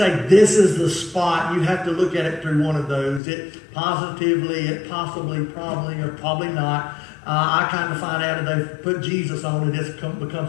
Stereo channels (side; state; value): right; drops out; at 3.2 s